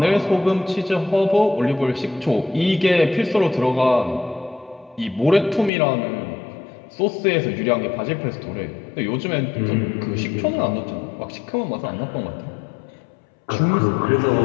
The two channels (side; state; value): right; drops out; at 5.7 s